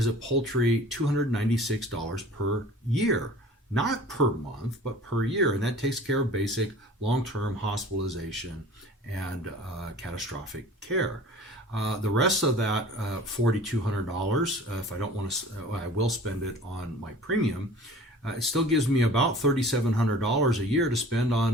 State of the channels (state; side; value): normal; both; correlation 0.44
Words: a paltry $296 per year. Not per month, but per year. And that takes care of basic long-term hospitalization and catastrophic care. The rest of that $4,200, if I don't want to, I will spend it on my premium. It still gives me about $3,700 a year to spend